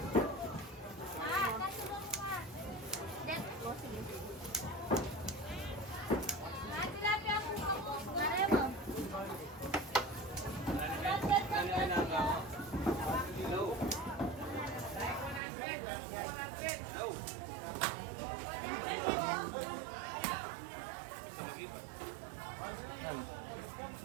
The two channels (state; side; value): drops out; left; at 15.4 s